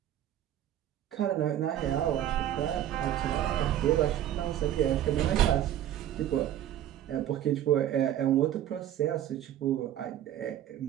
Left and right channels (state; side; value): quieter; left; 11.6 dB